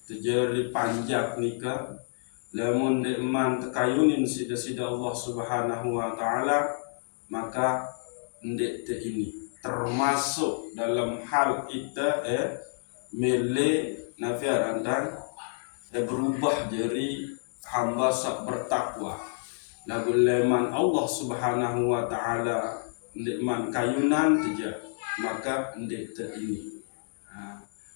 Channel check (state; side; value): silent; right; digital silence